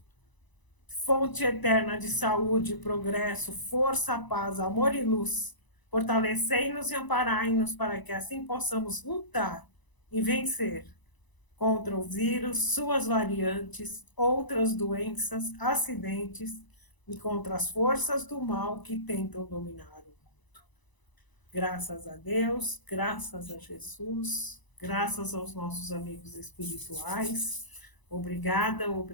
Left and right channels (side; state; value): right; late; 1.0 ms